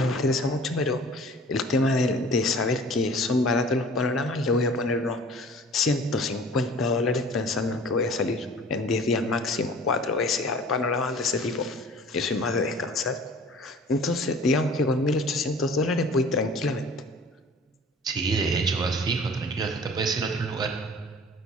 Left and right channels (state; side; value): normal; both; correlation 0.46